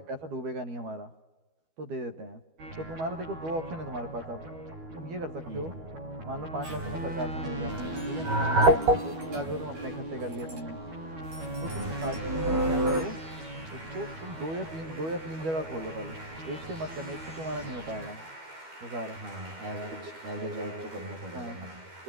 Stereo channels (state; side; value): late; left; 12 ms